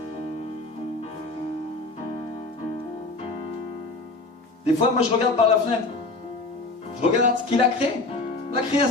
Des fois, moi, je regarde par la fenêtre. Je regarde ce qu'il a créé, la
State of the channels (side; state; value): right; quieter; 3.3 dB